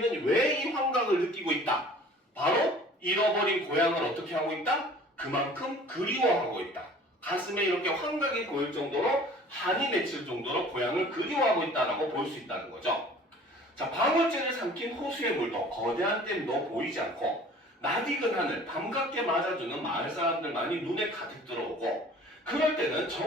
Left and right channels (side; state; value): both; normal; correlation 0.48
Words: 왜 이 환각을 느끼고 있다? 바로 잃어버린 고향을 어떻게 하고 있다? 그만큼 그리워하고 있다. 가슴에 이렇게 환각이 보일 정도로 한이 맺힐 정도로 고향을 그리워하고 있다라고 볼 수 있다는 거죠. 자, 방울제를 삼킨 호수의 물도 거대한 댐도 보이지 않고 낯익은 하늘, 밤갑게 맞아주는 마을 사람들만이 눈에 가득 들어오고 그럴 때는